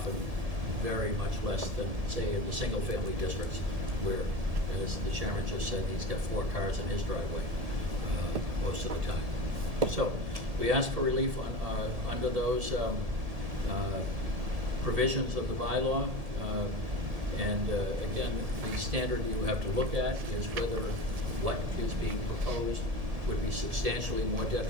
very much less than, say, in the single-family districts, where as the chairman just said, he's got 4 cars in his driveway most of the time. So we ask for relief under those provisions of the bylaw. And again, the standard you have to look at is whether what is being proposed would be substantially more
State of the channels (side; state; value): left; late; 1.7 ms